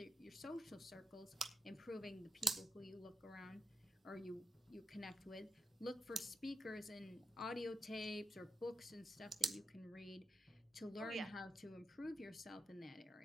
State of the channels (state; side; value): normal; both; correlation 0.85